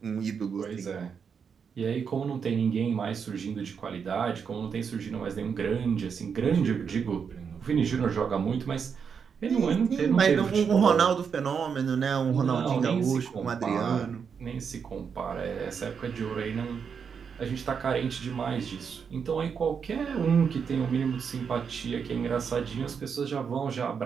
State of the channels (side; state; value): left; quieter; 6.5 dB